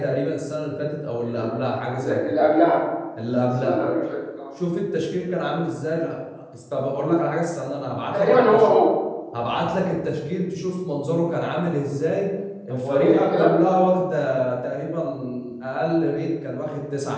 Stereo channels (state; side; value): identical; both; correlation 1.00